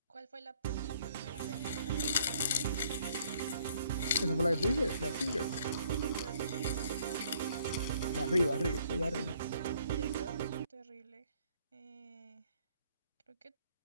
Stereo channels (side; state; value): both; inverted; correlation -0.63